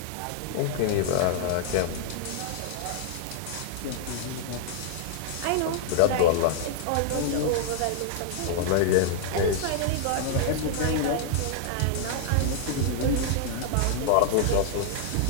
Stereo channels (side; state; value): both; different; correlation -0.01